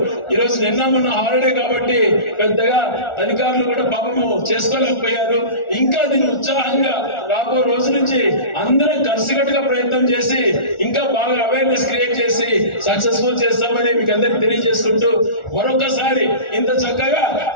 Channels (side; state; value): right; late; 1.4 ms